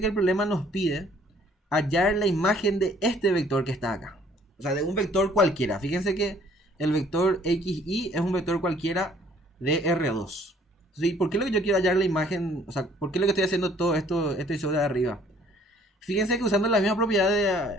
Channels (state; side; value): normal; both; correlation 0.59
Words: que el problema nos pide hallar la imagen de este vector que está acá. O sea, de un vector cualquiera. Fíjense que el vector xy es un vector cualquiera de R2. ¿Sí? ¿Por qué lo que yo quiero hallar la imagen? O sea, ¿por qué lo que estoy haciendo todo esto, este show de arriba? Fíjense que usando la misma propiedad